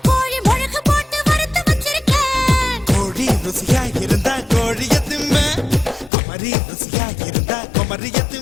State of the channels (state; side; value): drops out; right; at 6.1 s